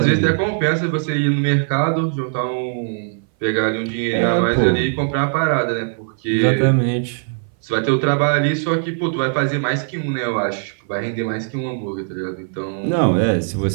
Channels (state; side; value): silent; left; 59 dB below the other